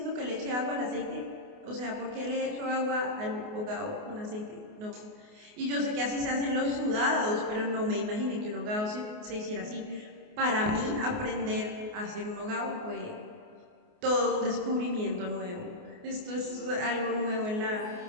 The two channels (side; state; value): left; late; 28 ms